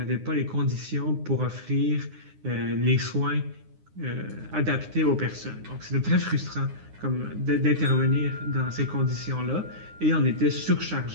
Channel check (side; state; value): left; late; 9.7 ms